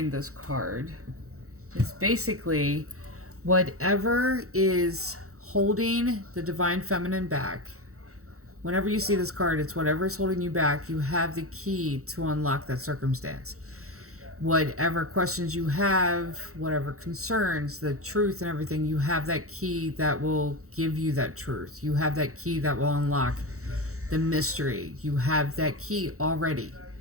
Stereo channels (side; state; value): left; late; 0.64 ms